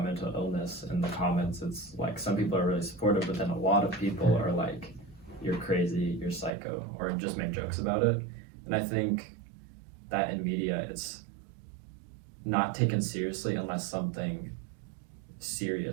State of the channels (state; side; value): drops out; left; at 6.6 s